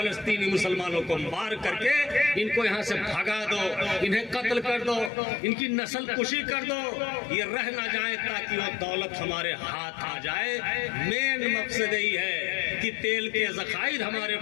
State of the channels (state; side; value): drops out; right; at 5.1 s